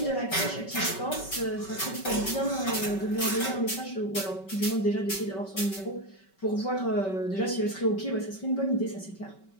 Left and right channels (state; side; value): late; right; 5.2 ms